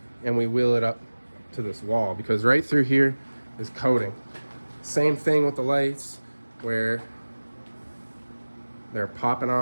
and we wheel it up to this wall because right through here is coating. Same thing with the lights where they're popping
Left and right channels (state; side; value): inverted; both; correlation -1.00